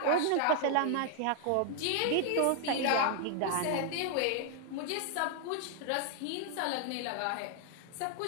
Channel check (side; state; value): both; different; correlation 0.00